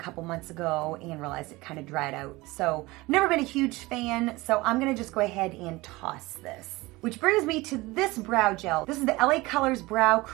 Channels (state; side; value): quieter; left; 21.2 dB